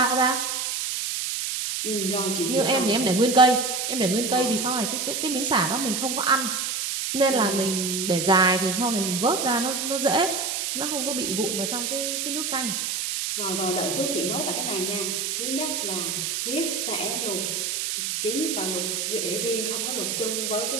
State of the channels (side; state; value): right; noise; hiss, 1 dB below the sound